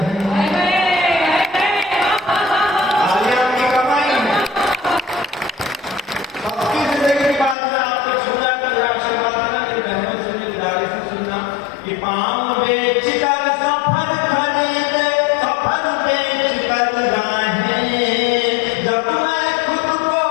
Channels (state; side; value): drops out; right; at 7.6 s